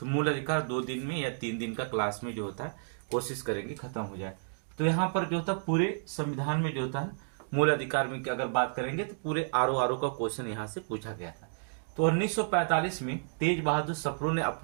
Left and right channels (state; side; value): silent; left; digital silence